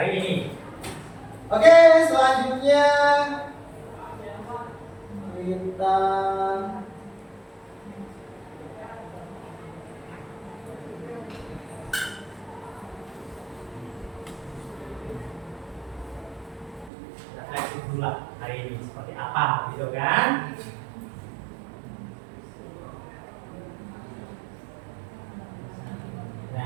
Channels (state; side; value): drops out; left; at 16.9 s